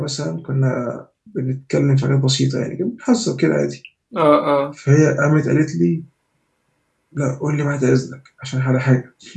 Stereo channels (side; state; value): both; identical; correlation 1.00